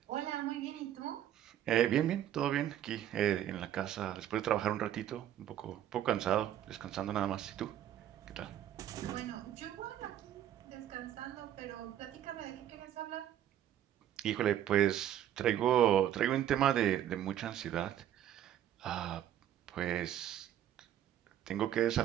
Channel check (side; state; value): left; quieter; 11.2 dB